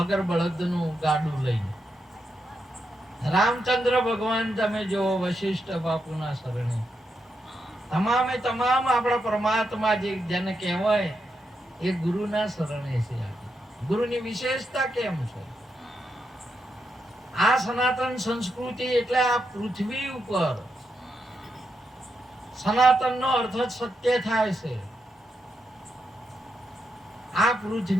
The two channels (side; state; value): both; normal; correlation 0.84